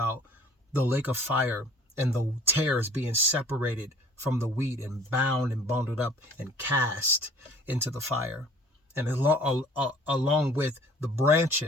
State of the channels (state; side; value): normal; both; correlation 0.52